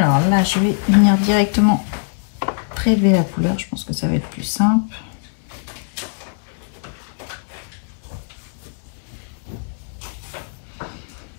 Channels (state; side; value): silent; right; 65 dB below the other